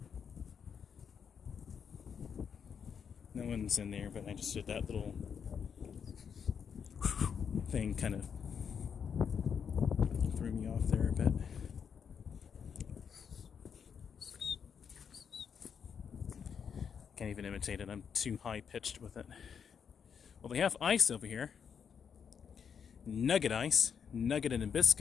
No one's in there, but I just did that little thing, kind of threw me off there a bit. Can't even imitate it, I'm too high pitched with it. Well, they have ice over here. Nugget ice, nugget and a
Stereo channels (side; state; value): right; quieter; 7.1 dB